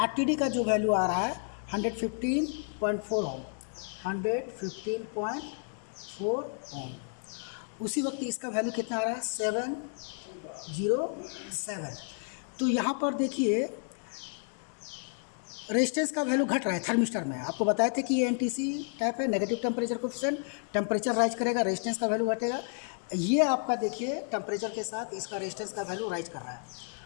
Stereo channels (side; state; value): right; silent; 57 dB below the other